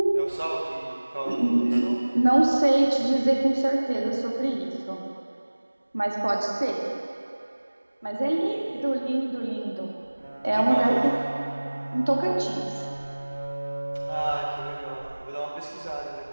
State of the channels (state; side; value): inverted; both; correlation -1.00